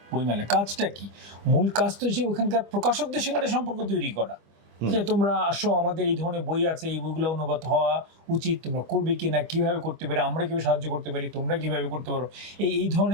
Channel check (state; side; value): late; left; 25 ms